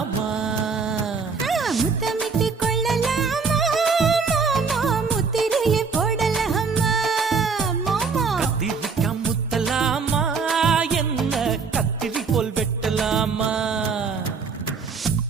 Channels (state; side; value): quieter; left; 5.1 dB